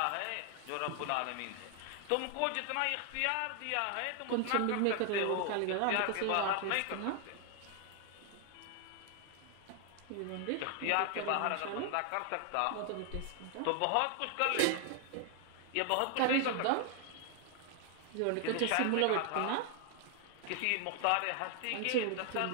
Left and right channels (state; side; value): different; both; correlation 0.00